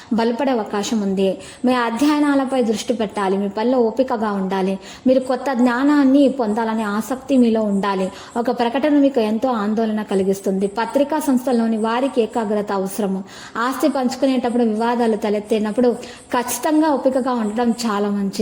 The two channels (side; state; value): both; identical; correlation 1.00